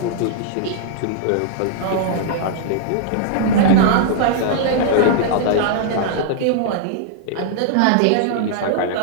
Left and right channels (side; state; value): both; different; correlation -0.01